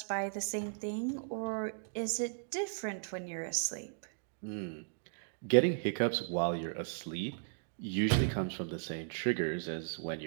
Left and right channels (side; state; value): left; silent; digital silence